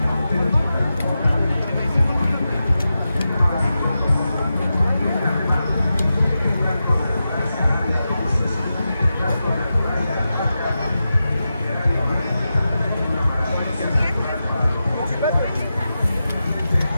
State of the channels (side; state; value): both; inverted; correlation -0.91